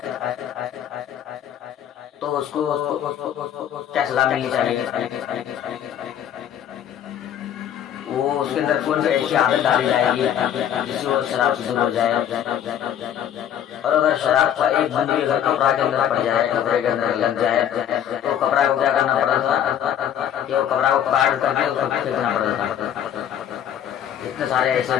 तो उसको क्या सलाह मिलनी चाहिए? वो उसके अंदर कौन सी ऐसी आदत डाली जाएगी जिससे वो शराब से दूर हो जाए। और अगर शराब का एक बूंद भी अगर कपड़ा के अंदर पड़ जाए, कपड़े के अंदर लग जाए, तो कपड़ा को क्या करना पड़ा था कि वो कपड़ा को काट करके उसको फेंकना पड़ा था। इतने सारे ऐसे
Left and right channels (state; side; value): quieter; right; 9.9 dB